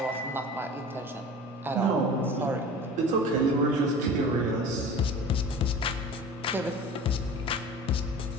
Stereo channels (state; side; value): normal; both; correlation 0.38